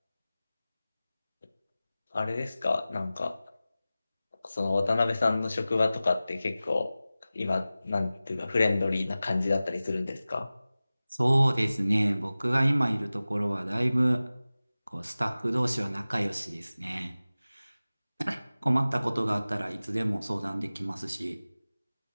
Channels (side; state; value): both; inverted; correlation -0.96